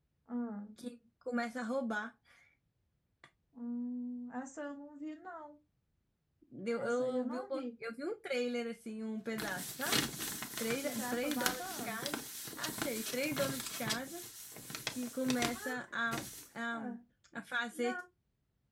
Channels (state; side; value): identical; both; correlation 1.00